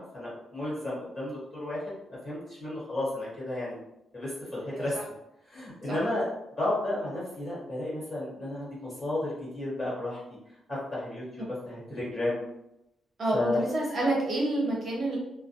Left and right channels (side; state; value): both; normal; correlation 0.82